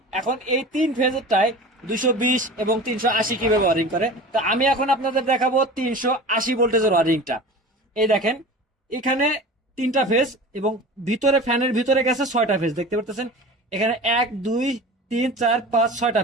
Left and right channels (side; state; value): both; normal; correlation 0.36